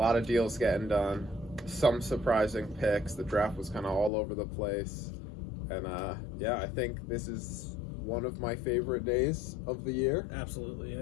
of deals getting done. Some surprising picks. The draft was kind of all over the place. And yeah, I think this is one of my favorite days of the year. Absolutely,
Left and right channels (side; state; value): right; drops out; at 4.1 s